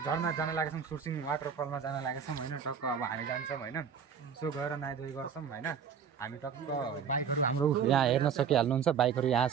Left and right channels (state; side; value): quieter; left; 7.2 dB